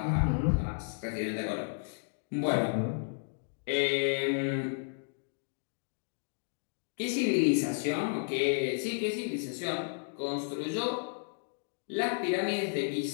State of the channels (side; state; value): right; silent; digital silence